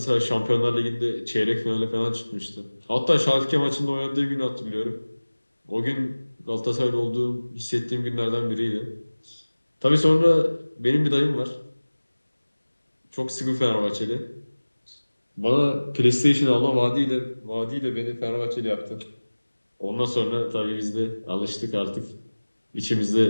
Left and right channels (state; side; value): inverted; both; correlation -1.00